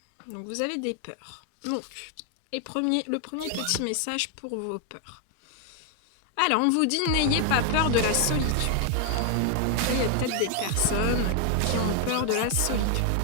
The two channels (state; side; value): different; both; correlation 0.00